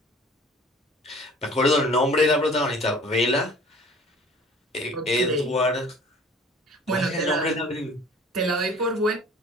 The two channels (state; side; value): normal; both; correlation 0.48